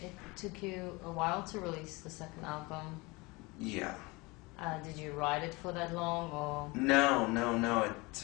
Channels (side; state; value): right; quieter; 24.7 dB